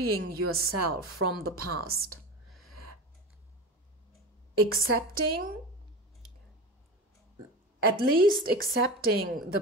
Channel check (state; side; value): normal; both; correlation 0.28